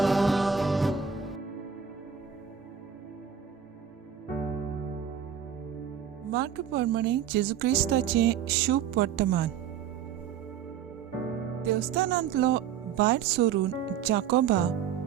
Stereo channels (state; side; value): quieter; left; 8.2 dB